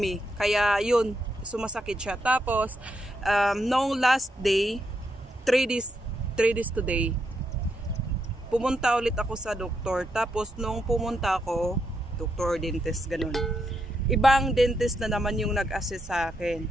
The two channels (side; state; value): both; normal; correlation 0.81